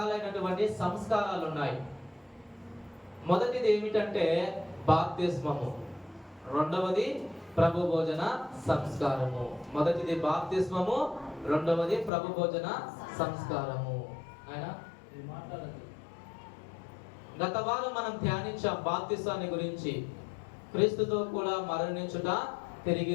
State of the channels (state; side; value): drops out; right; at 12.1 s